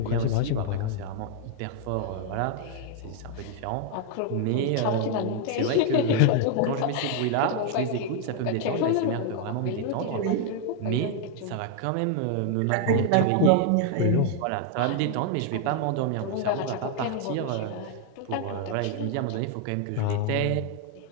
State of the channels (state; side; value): different; both; correlation 0.00